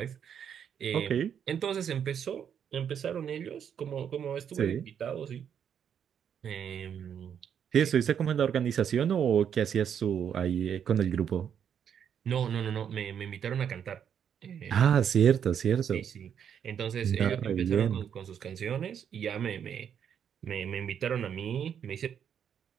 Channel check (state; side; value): quieter; left; 8.4 dB